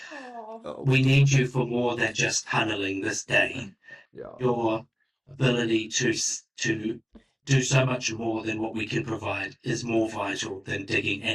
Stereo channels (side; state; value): both; identical; correlation 1.00